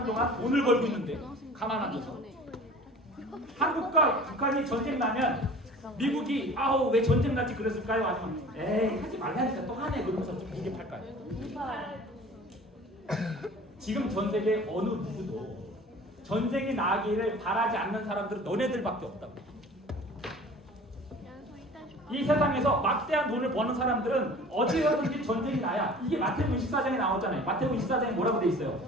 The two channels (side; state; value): both; normal; correlation 0.44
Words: 동안 돈을 벌고 있는데 가만 앉아서 한국과 북한이 전쟁 나면 미국이 아우 왜 전쟁 났지 그랬을까요? 아니면 에이 하지 말라니까 또 하네 그러면서 좀 무게 팔까요? 지금 전 세계 어느 누구도 전쟁이 나기를 바라지 않는 사람들은 너네들밖에 없다고. 이 세상에서 막대한 돈을 버는 사람들은 어디서든지 전쟁이 나야. 이게 마태복음 24장에 나오잖아요. 마태복음 24장에 뭐라고 돼 있어요?